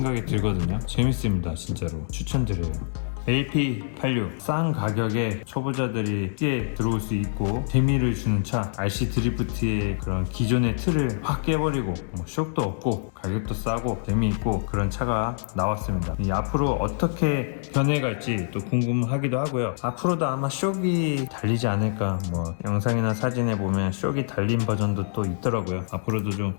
들거든요. 재밌습니다. 진짜로 추천드려요. LP86 싼 가격에 초보자들이 쉽게 들어올 수 있고 재미를 주는 차 RC 드리프트의 그런 기존의 틀을 확 깨버리고 쇼크도 없고 가격도 싸고 재미있고 그런 차가 나왔습니다. 앞으로 어떻게 변해갈지 또 궁금하기도 하고요. 앞으로도 아마 쇼기 달리지 않을까 뭐 영상이나 사진에 보면 쇼기 달린 버전도 또 있더라고요. 앞으로도 좀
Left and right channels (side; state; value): right; silent; digital silence